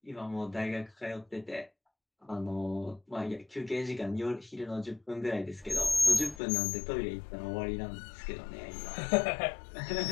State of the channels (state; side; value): drops out; right; at 6.4 s